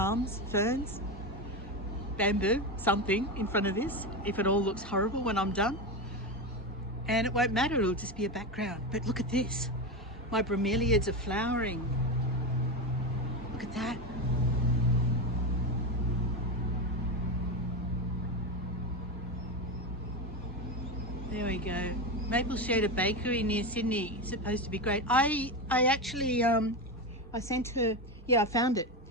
ferns, bamboo, something in front of this, if it all looks horrible when I'm done. And it won't matter, it'll just be a background. But look at this. My bromeliads are flowering. Look at that. There we go. Maple Shooter Bakery near Sydney. It's supposed to be great. I actually, I sent her, yeah, I found it.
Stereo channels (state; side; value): normal; both; correlation 0.16